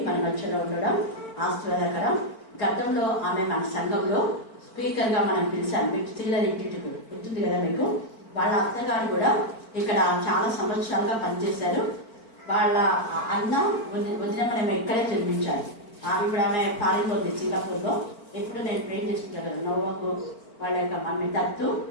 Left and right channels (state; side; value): late; right; 4.5 ms